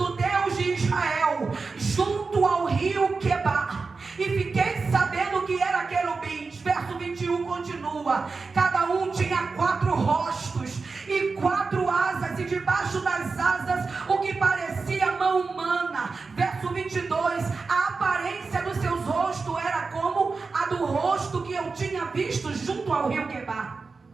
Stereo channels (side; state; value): left; quieter; 4.4 dB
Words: Deus de Israel, junto ao rio Quebar. E fiquei sabendo que era querubins. Verso 21 continua: cada um tinha 4 rostos e 4 asas, e debaixo das asas o que parecia mão humana. Verso 22, a aparência dos seus rostos era como a do rosto que eu tinha visto junto ao rio Quebar.